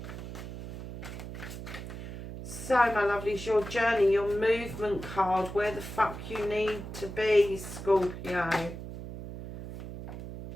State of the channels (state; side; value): noise; right; hum, 10 dB below the sound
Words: So, my lovelies, your journey, your movement card, where the fuck you need to be, Scorpio.